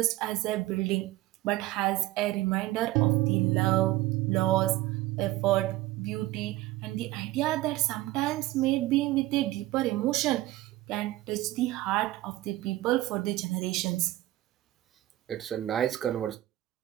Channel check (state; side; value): quieter; left; 16.9 dB